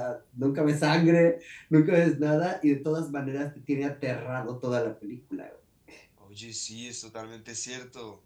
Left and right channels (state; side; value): identical; both; correlation 1.00